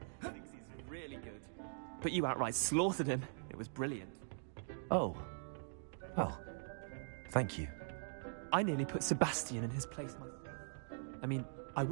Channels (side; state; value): left; silent; digital silence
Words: Thinks he's really good. But you outright slaughtered him. It was brilliant. Oh. Well, thank you. I nearly put Sebastian in his place myself. I mean, I